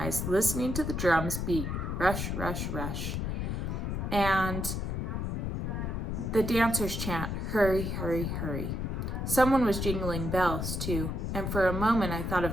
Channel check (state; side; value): noise; left; rumble, 2 dB below the sound